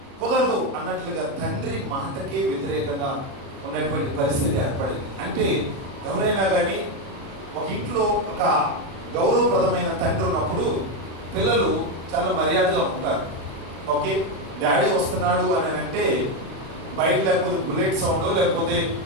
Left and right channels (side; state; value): left; late; 37 ms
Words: కుదరదు అన్నట్లుగా తండ్రి మాటకే వ్యతిరేకంగా ఉన్నటువంటి పరిస్థితి ఏర్పడింది. అంటే ఎవరైనా కానీ ఒక ఇంట్లో ఒక గౌరవప్రదమైన తండ్రి ఉన్నప్పుడు పిల్లలు చాలా మర్యాదగా ఉంటారు. ఓకే, డాడీ వస్తున్నాడు అని అంటే బయట లేకపోతే బుల్లెట్ సౌండ్ లేకపోతే